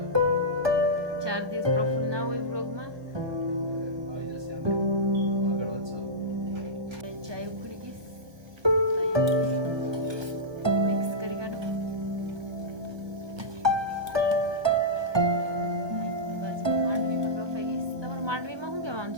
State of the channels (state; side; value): late; left; 1.2 ms